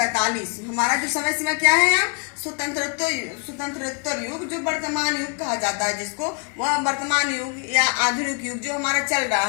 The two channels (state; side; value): quieter; right; 38.9 dB